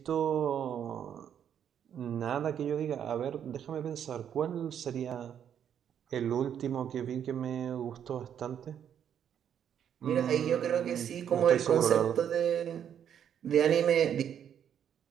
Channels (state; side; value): quieter; left; 9.0 dB